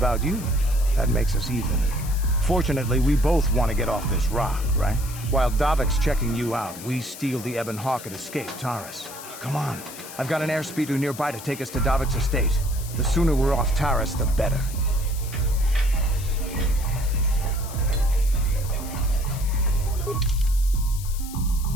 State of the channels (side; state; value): left; noise; hiss, 14 dB below the sound